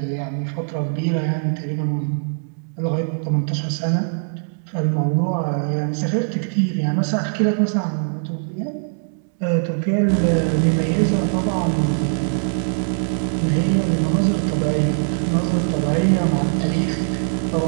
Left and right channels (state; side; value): silent; left; digital silence